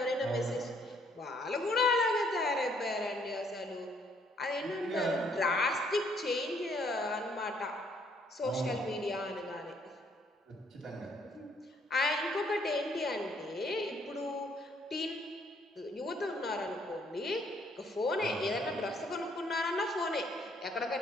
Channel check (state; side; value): normal; both; correlation 0.67